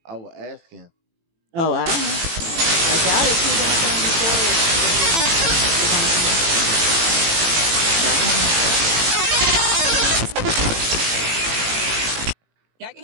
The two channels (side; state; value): left; late; 18 ms